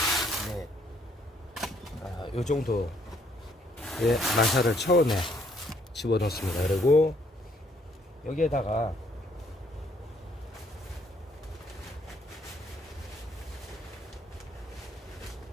넷. 요 정도의 마사를 처음에 집어넣습니다. 그리고 여기에다가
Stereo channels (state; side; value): normal; both; correlation 0.67